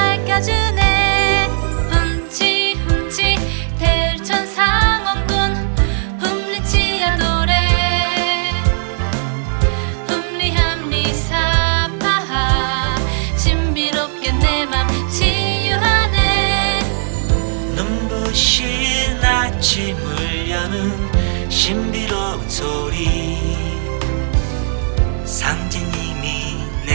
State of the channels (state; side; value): silent; left; digital silence